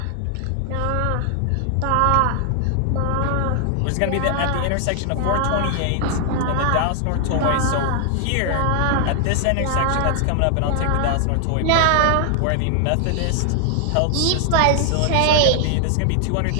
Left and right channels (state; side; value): different; both; correlation 0.00